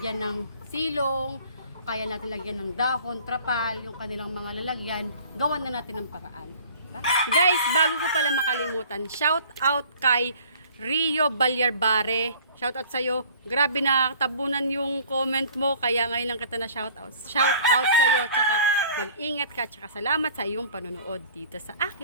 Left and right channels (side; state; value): both; inverted; correlation -0.50